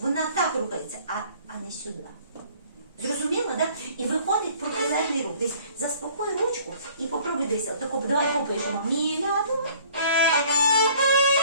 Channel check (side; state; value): both; inverted; correlation -0.55